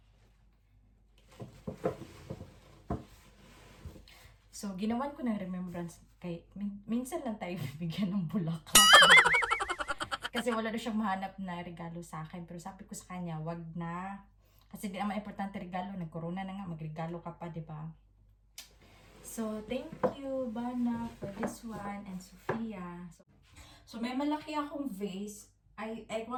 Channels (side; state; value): both; identical; correlation 1.00